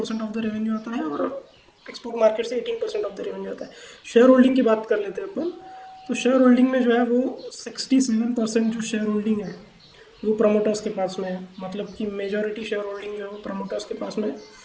ऑफ द रेवेन्यू आता है और एक्सपोर्ट मार्केट से 18% ऑफ द रेवेन्यू आता है। शेयर होल्डिंग की बात कर लेते हैं अपन, तो शेयर होल्डिंग में जो है वो 67% जो शेयर होल्डिंग है वो प्रमोटर्स के पास में है। मतलब कि मेजॉरिटी शेयर होल्डिंग जो है वो प्रमोटर्स के पास में है।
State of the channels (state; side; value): identical; both; correlation 1.00